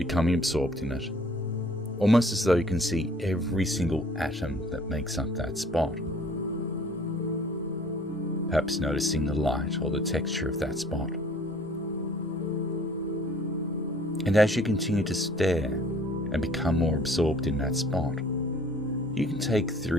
absorbed in it, almost as though you can see every single atom that makes up that spot. Perhaps noticing the light or the texture of that spot. And as you continue to stare and become more absorbed in that spot, you can take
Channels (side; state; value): both; normal; correlation 0.55